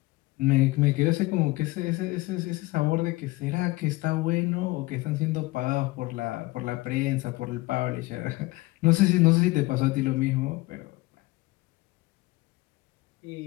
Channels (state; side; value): quieter; right; 21.4 dB